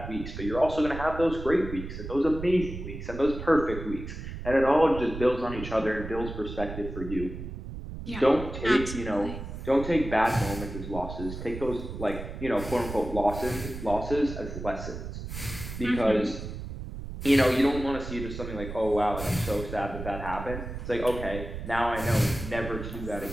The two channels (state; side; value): noise; right; rumble, 9 dB below the sound